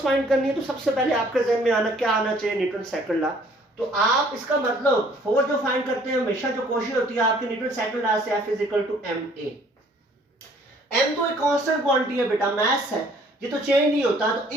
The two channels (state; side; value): normal; both; correlation 0.58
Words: फाइंड करनी है तो सबसे पहले आपके जहन में आना क्या आना चाहिए? Newton second law. तो आप इसका मतलब फोर्स जो फाइंड करते हैं हमेशा जो कोशिश होती है आपके न्यूटन सेकंड लॉ से, F = ma। m तो एक कांस्टेंट क्वांटिटी है बेटा, मास है, ये तो चेंज नहीं होता, तो